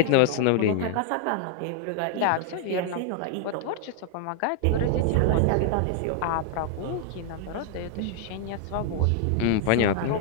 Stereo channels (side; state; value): both; different; correlation 0.00